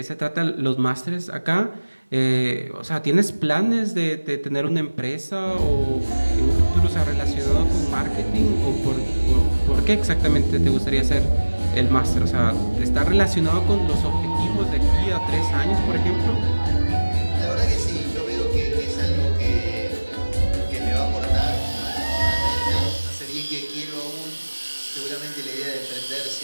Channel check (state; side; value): inverted; both; correlation -1.00